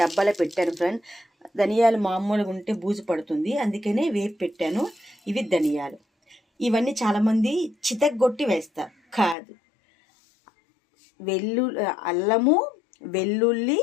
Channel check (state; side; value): drops out; right; at 9.3 s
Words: పెట్టాను ఫ్రెండ్. ధనియాలు మామూలుగా ఉంటే బూజు పడుతుంది, అందుకనే వేపి పెట్టాను. ఇవి ధనియాలు. ఇవన్నీ చాలామంది చితగ్గొట్టి వేస్తారు, కాదు. అల్లము, వెల్లుల్లి,